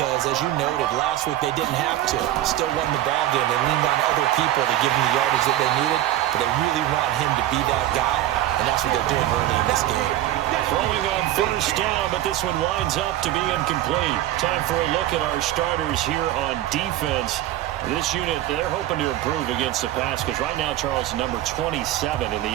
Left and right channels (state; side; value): quieter; left; 13.8 dB